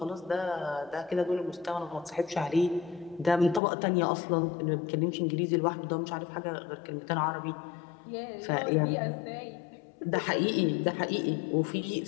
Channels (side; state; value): right; drops out; at 3.6 s